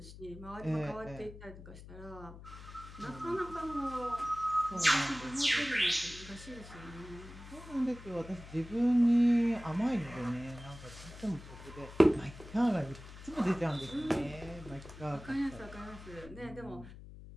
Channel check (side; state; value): left; noise; hum, 15 dB below the sound